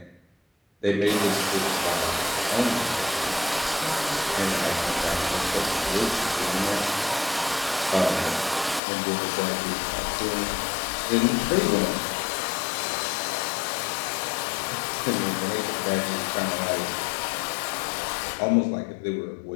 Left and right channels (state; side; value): drops out; right; at 8.8 s